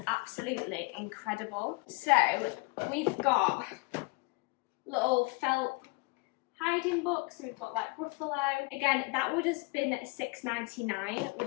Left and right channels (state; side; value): quieter; right; 28.2 dB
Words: absolutely incredible. So we've got little felt hiding books, so we've got like Ruffalo. Again, that would have been £6.99,